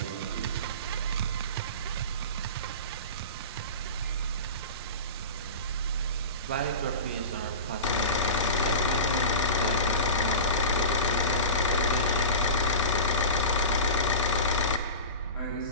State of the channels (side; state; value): both; inverted; correlation -0.30